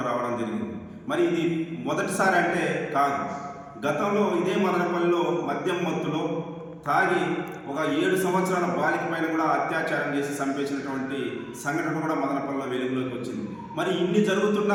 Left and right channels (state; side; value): identical; both; correlation 1.00